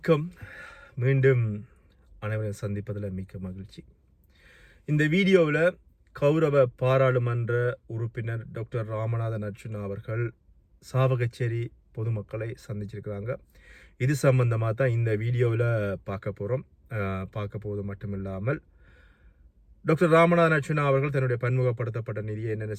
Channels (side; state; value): both; identical; correlation 1.00